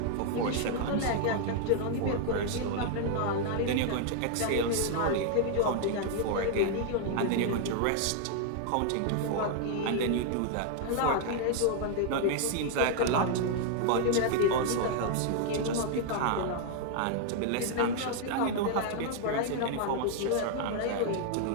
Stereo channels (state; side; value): different; both; correlation 0.00